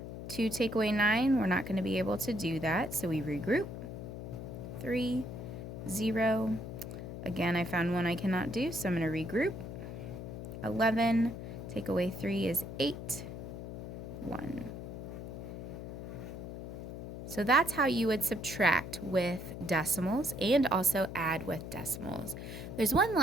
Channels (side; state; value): left; noise; hum, 8 dB below the sound